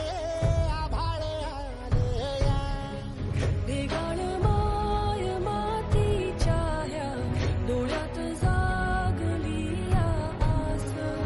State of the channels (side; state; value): both; identical; correlation 1.00